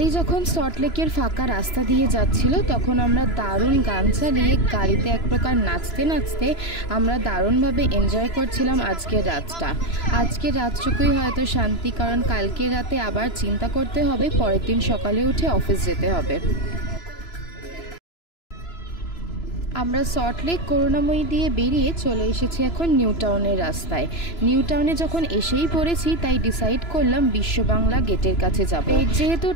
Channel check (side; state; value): right; late; 3.0 ms